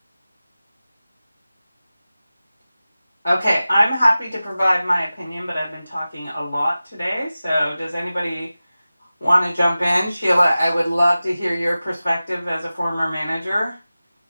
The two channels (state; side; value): inverted; both; correlation -0.96